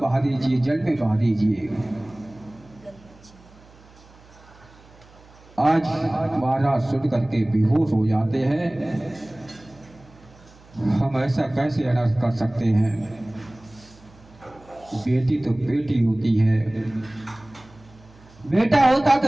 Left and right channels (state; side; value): noise; right; hum, 25 dB below the sound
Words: दीजिए, जल में बहा दीजिए। आज महाराज सुन करके बेहोश हो जाते हैं। हम ऐसा कैसे अनर्थ कर सकते हैं। बेटी तो बेटी होती है, बेटा होता